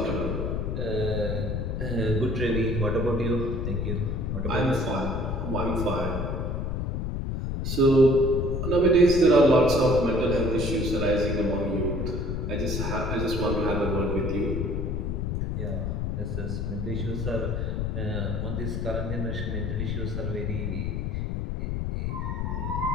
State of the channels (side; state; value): left; noise; rumble, 1 dB below the sound